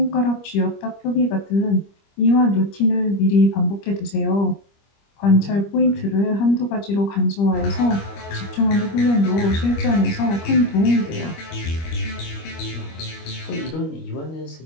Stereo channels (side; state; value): right; late; 25 ms